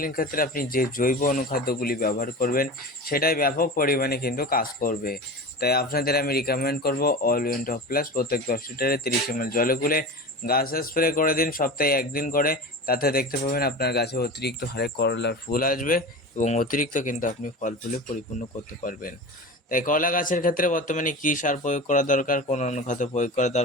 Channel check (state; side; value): normal; both; correlation 0.31